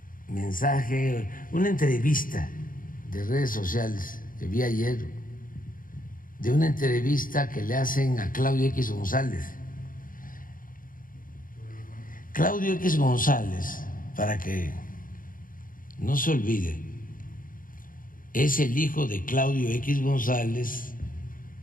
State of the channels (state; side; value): late; right; 0.40 ms